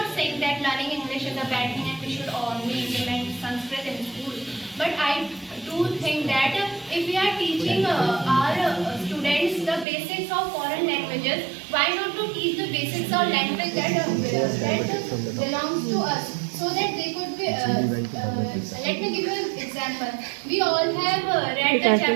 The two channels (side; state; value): left; drops out; at 9.9 s